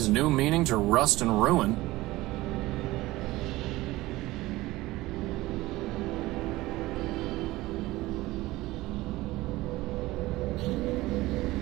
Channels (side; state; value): left; quieter; 18.7 dB